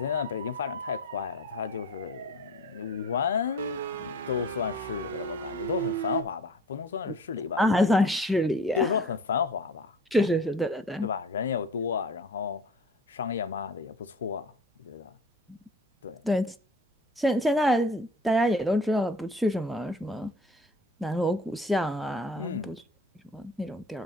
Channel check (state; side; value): normal; both; correlation 0.43